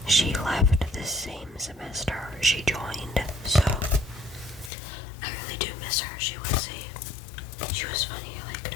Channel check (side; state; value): right; drops out; at 4.7 s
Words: She left the same semester she joined, so I really do miss her. She was funny. I liked